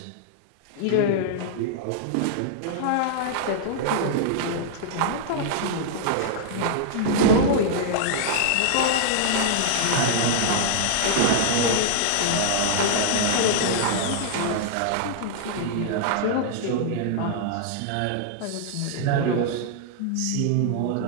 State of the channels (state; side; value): different; both; correlation -0.01